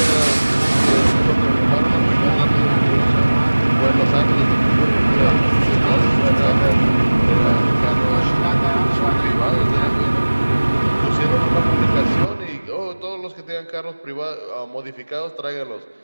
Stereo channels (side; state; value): both; inverted; correlation -1.00